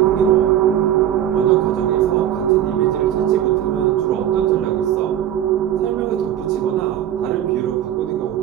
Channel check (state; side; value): quieter; left; 11.2 dB